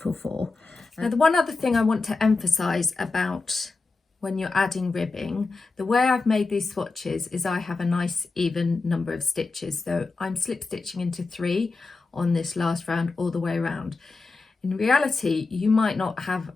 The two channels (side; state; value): right; quieter; 3.9 dB